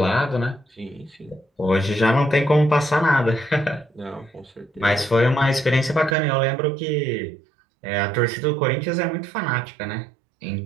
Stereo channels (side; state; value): left; drops out; at 6.2 s